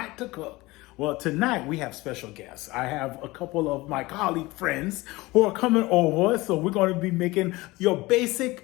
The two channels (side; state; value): right; quieter; 20.9 dB